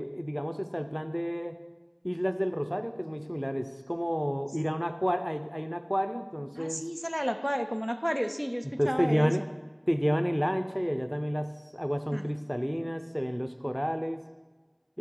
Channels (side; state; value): both; identical; correlation 1.00